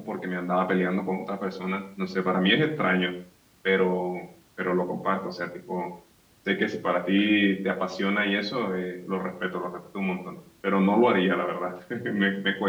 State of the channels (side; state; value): both; identical; correlation 1.00